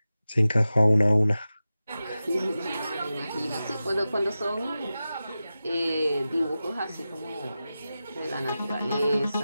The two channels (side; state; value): both; inverted; correlation -0.93